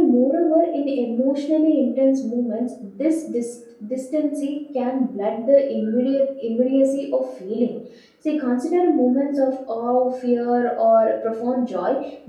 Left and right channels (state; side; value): identical; both; correlation 1.00